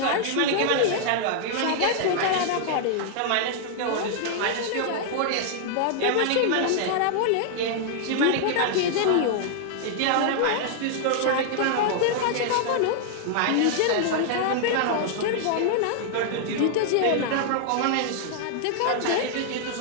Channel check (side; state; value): both; different; correlation 0.00